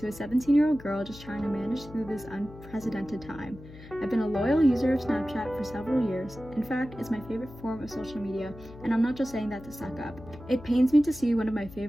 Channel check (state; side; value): noise; left; hum, 17 dB below the sound